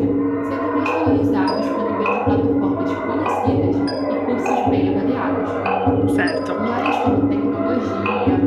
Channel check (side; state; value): both; identical; correlation 1.00